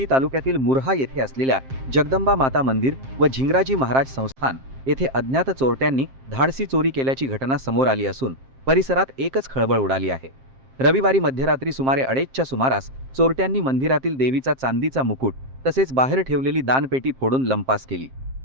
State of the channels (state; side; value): late; left; 7.6 ms